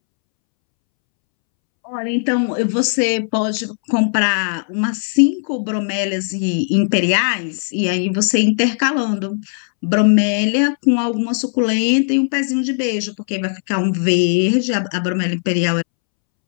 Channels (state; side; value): silent; right; 67 dB below the other